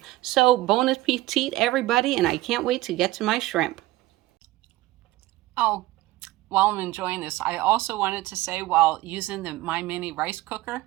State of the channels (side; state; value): left; quieter; 17.7 dB